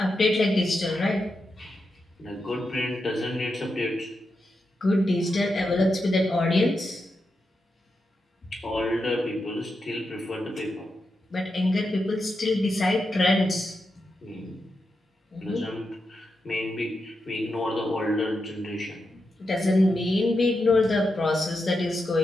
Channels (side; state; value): both; normal; correlation 0.87